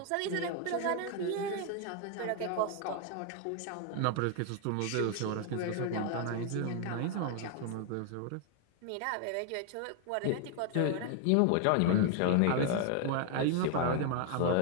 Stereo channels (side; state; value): both; different; correlation 0.00